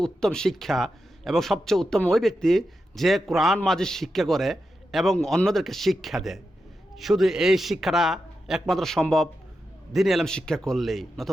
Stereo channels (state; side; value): normal; both; correlation 0.88